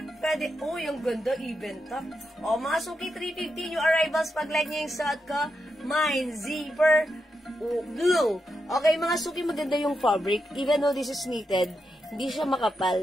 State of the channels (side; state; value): both; normal; correlation 0.85